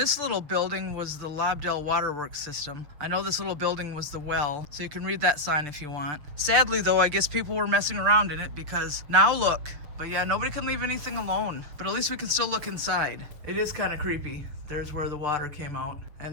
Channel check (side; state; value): left; late; 6.7 ms